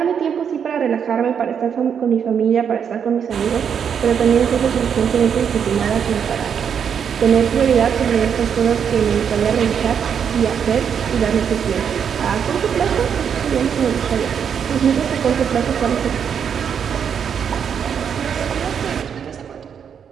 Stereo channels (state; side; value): quieter; left; 7.6 dB